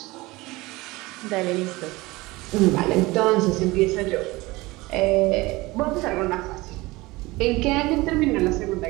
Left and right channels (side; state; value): left; quieter; 21.3 dB